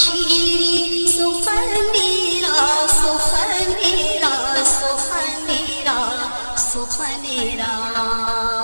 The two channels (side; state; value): both; inverted; correlation -1.00